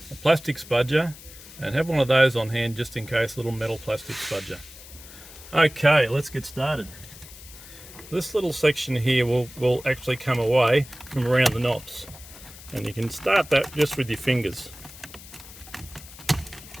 a plastic spudger, and have one of those on hand just in case, a little metal plastic spudger. Okay, let's get started. This little section here will actually come away from around the knobs, and you can start that just with your fingers.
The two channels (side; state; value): left; noise; hiss, 17 dB below the sound